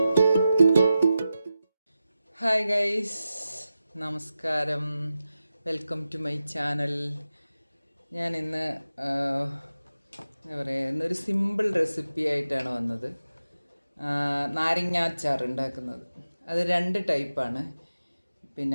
Hi guys, നമസ്കാരം. Welcome to my channel. ഞാൻ ഇന്ന് എന്താ പറയുക, ഇന്നൊരു സിമ്പിൾ റെസിപ്പി ആയിട്ടാണ് വന്നത്. നാരങ്ങ അച്ചാർ ഉണ്ടാക്കുന്നത്. അത് 2 ടൈപ്പാണ്.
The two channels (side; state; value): both; inverted; correlation -0.92